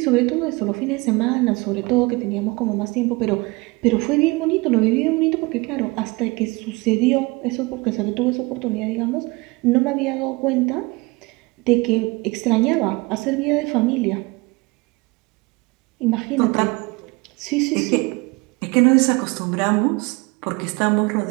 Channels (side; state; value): left; quieter; 25.1 dB